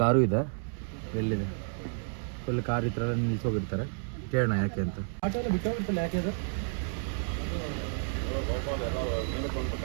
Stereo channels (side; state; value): left; silent; 57 dB below the other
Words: ಕಾರು ಇದೆ. ಎಲ್ಲಿದೆ? ಫುಲ್ ಕಾರ್ ಈ ಥರ ನಿಲ್ಸೋಗಿರ್ತಾರೆ. ಕೇಳೋಣ ಯಾಕೆ ಅಂತ. ಆಟೋ ಎಲ್ಲ ಬಿಟ್ಟೋಗ್ಬಿಡ್ತಲ್ಲ, ಯಾಕೆ ಅದು?